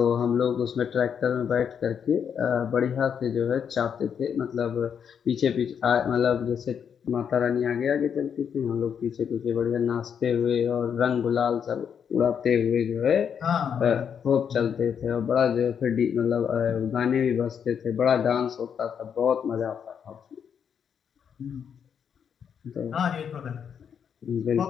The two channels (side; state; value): right; quieter; 7.6 dB